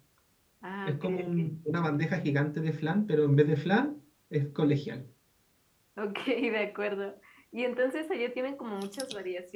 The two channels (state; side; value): identical; both; correlation 1.00